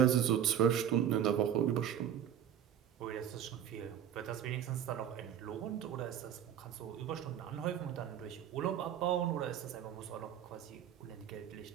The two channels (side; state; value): left; quieter; 9.6 dB